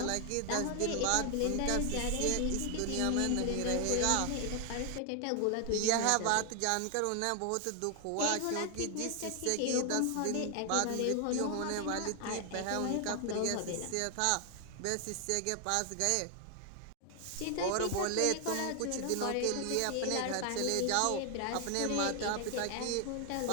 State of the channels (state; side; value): different; both; correlation 0.00